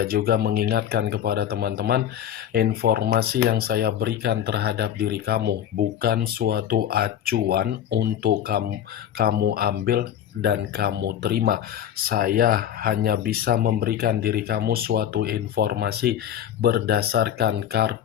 juga mengingatkan kepada teman-teman, informasi yang saya berikan terhadap diri kamu bukan suatu acuan untuk kamu ambil dan kamu terima. Saya hanya bisa memberikan diri kamu suatu informasi berdasarkan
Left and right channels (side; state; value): right; quieter; 10.3 dB